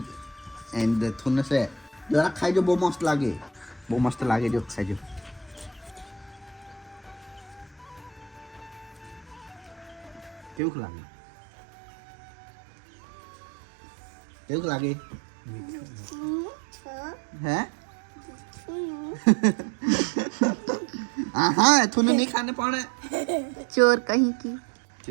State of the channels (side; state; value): left; drops out; at 10.6 s